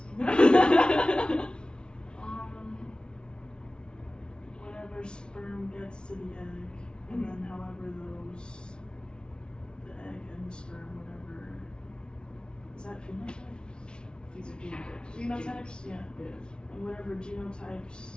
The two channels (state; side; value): late; right; 0.055 ms